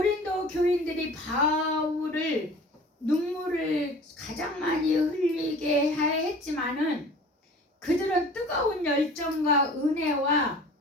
교인들이 바울을 눈물을 가장 많이 흘리게 했지만은 그들은 뜨거운 열정과 은혜와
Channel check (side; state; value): both; normal; correlation 0.44